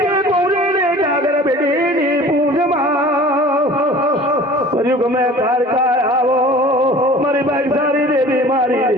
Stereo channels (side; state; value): both; normal; correlation 0.45